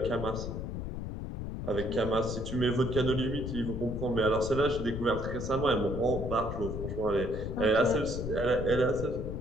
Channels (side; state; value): left; noise; rumble, 5 dB below the sound